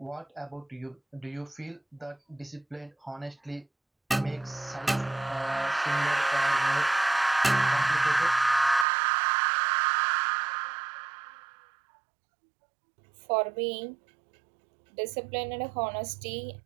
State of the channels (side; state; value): left; drops out; at 8.8 s